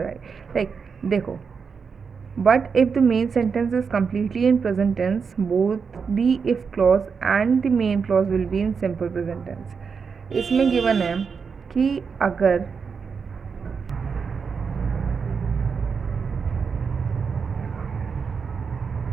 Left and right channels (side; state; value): left; quieter; 5.7 dB